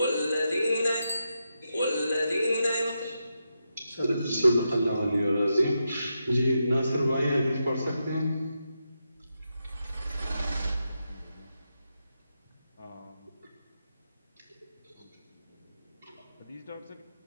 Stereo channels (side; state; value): both; inverted; correlation -0.86